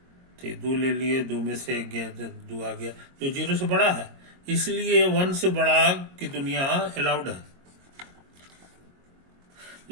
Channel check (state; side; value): late; left; 22 ms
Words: तो 2 ले लिए, 2 में से 1 गया, 2 आ गया, जो 0 से बड़ा है, इसलिए 1 से बड़ा की दुनिया अलाउड है।